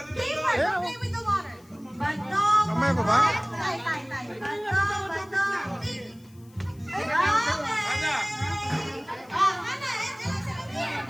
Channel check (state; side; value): noise; left; hiss, 29 dB below the sound